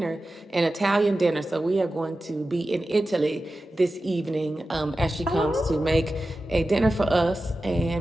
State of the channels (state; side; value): normal; both; correlation 0.94